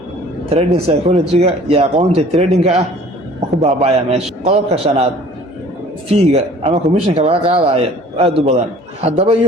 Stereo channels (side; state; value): both; normal; correlation 0.50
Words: trading psychology-ga iyo aqoonta trading-ka ah ku baaba'aya meesha. qodobka shanaad, fiiga ama commissionka laga qaadayo aad u badan. haddaba